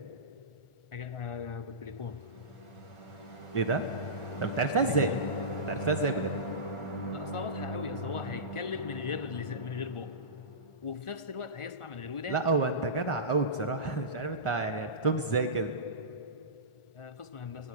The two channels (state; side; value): late; right; 1.4 ms